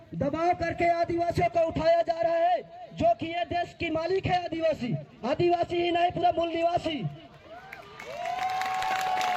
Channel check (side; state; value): both; identical; correlation 1.00